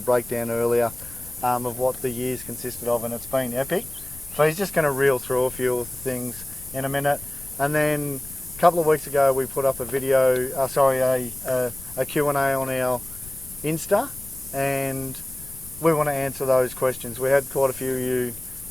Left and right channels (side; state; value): left; noise; rumble, 17 dB below the sound